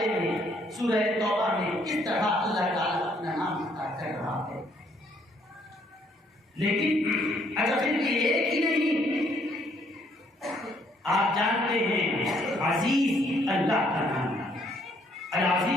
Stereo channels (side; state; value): both; normal; correlation 0.67